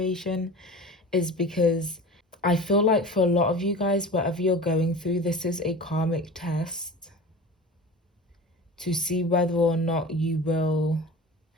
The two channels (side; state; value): both; normal; correlation 0.35